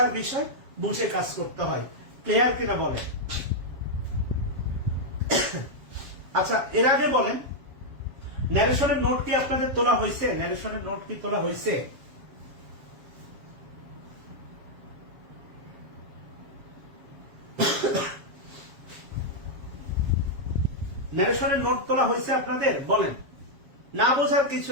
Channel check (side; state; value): left; late; 7.3 ms